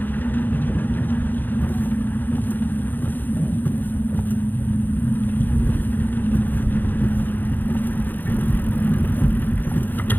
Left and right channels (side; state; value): right; late; 0.087 ms